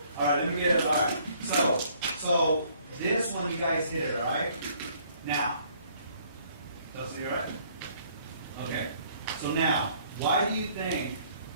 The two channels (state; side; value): inverted; both; correlation -0.62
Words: all right, let me get it, all right. So this one, you guys hit it, all right? Now, Dustin, you all right? Okay, so now, why do you think